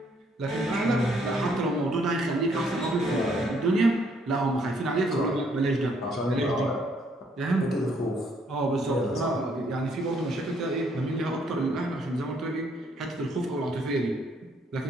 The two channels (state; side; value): normal; both; correlation 0.68